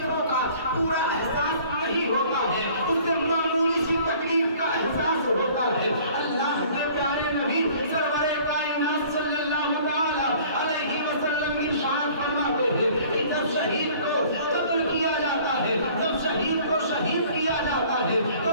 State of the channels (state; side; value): inverted; both; correlation -0.52